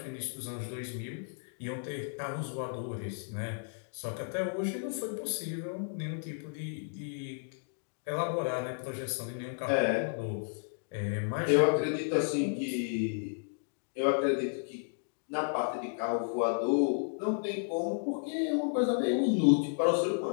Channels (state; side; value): silent; right; digital silence